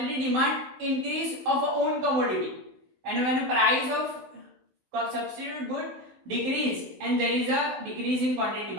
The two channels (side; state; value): left; late; 16 ms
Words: demand increase of a own commodity, and when price of substitute good decrease and there is a decrease in quantity